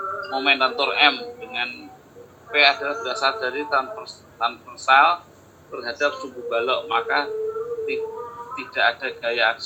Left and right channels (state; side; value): identical; both; correlation 1.00